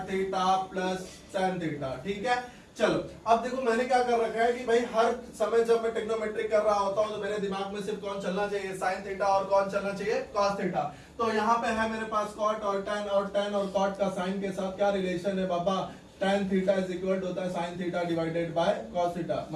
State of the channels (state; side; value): identical; both; correlation 1.00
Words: theta plus tan theta, ठीक है। चलो अब देखो मैंने क्या कर रखा है कि भाई हर समय जब मैं ट्रिग्नोमेट्री कर रहा होता हूं तो मेरे दिमाग में सिर्फ कौन चलना चाहिए, साइन थीटा, और कौन चलना चाहिए, कॉस थीटा। तो यहाँ पे है मेरे पास कॉट और टेन, और टेन और कॉट का साइन के साथ क्या रिलेशन है बाबा, tan theta is equal to होता है sine theta divided by cos theta.